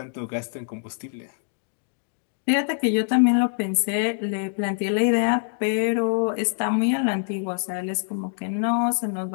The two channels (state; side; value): silent; right; digital silence